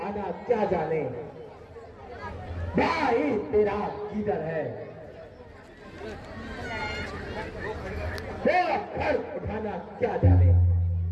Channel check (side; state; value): both; identical; correlation 1.00